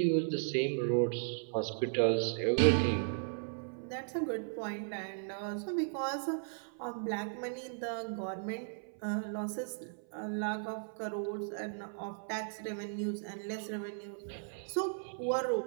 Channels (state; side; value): silent; left; 54 dB below the other